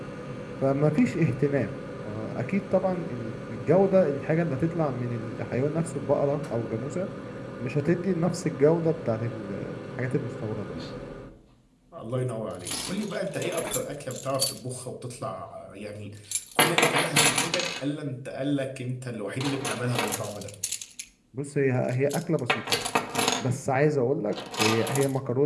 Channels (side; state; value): both; identical; correlation 1.00